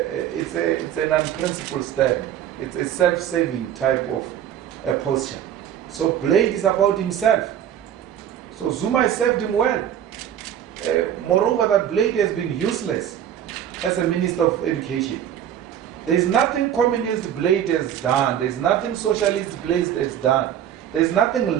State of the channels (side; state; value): left; quieter; 10.1 dB